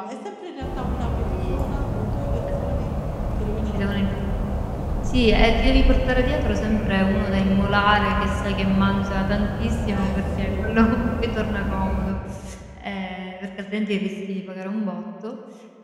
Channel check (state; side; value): identical; both; correlation 1.00